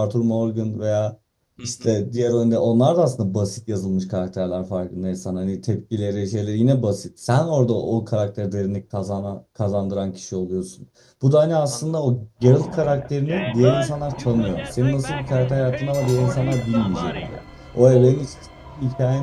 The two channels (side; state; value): both; identical; correlation 1.00